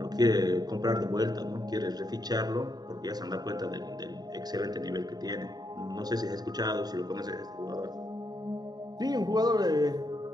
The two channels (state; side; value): late; left; 0.19 ms